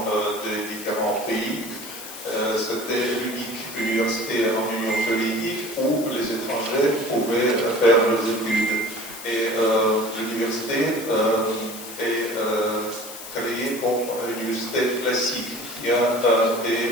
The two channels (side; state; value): left; noise; hiss, 12 dB below the sound